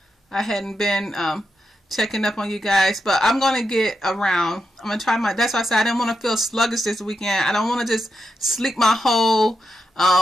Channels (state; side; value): normal; both; correlation 0.85